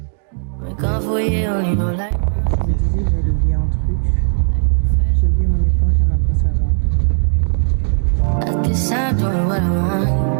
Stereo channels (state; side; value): silent; left; digital silence